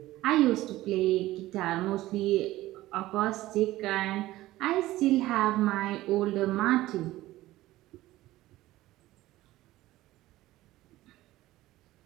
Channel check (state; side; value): quieter; left; 16.5 dB